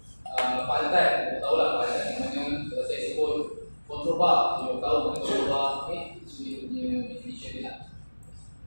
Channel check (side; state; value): both; inverted; correlation -1.00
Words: file type, kita tahu lah file type yang mana. Setelah saya sebut control bar, kita tahu mana control bar. Okay, so dia punya definition dia lah.